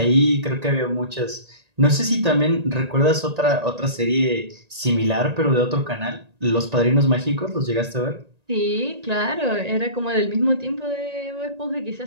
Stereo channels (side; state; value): left; late; 1.9 ms